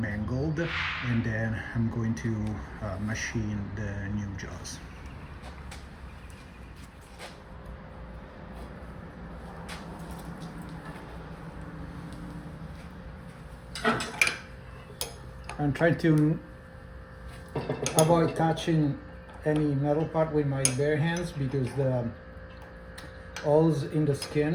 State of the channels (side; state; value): both; identical; correlation 1.00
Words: mangled, and then I'm going to machine the new jaws. I'm trying to avoid touching any metal part with my bare hands because the holes in the